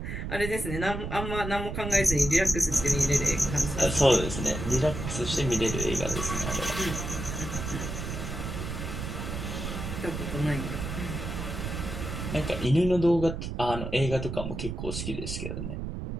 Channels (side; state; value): right; noise; rumble, 5 dB below the sound